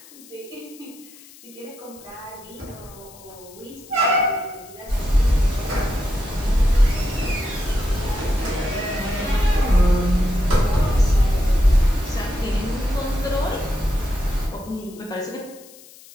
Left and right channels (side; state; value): left; noise; hiss, 22 dB below the sound